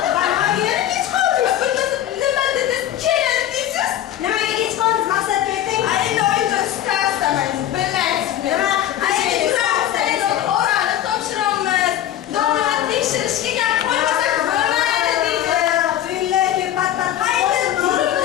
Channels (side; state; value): right; quieter; 11.9 dB